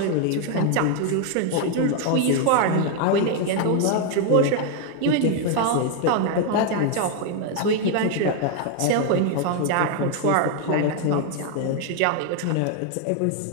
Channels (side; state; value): both; different; correlation 0.00